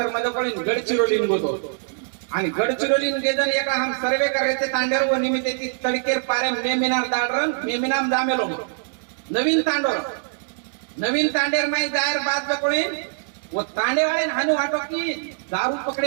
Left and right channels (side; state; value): left; silent; 63 dB below the other